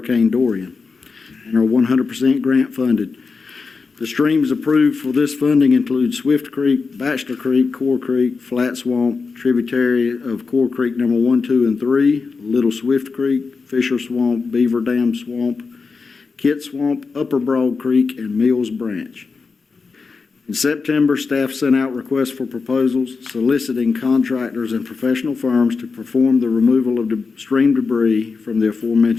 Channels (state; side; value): quieter; right; 4.7 dB